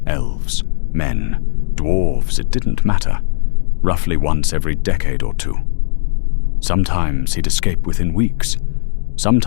Elves, men, dwarves, it didn't matter. Roughly once every decade or two. Sometimes he'd escape within weeks.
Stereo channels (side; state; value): right; silent; digital silence